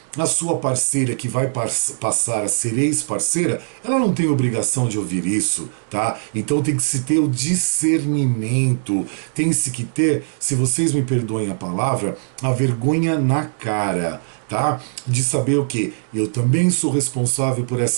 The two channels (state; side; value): silent; left; digital silence